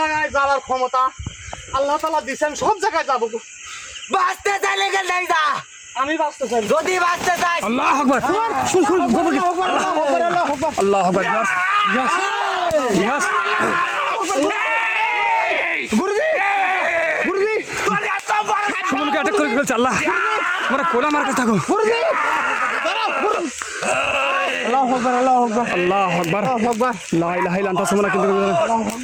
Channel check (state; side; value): identical; both; correlation 1.00